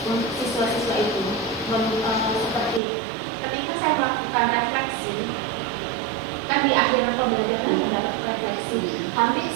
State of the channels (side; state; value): left; drops out; at 2.8 s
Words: untuk siswa-siswa itu. Seperti ketika saya melakukan refleksi, kan di akhir pembelajaran mendapat refleksi, hampir